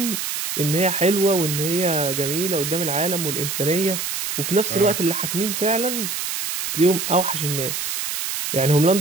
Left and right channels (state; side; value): noise; right; hiss, 3 dB below the sound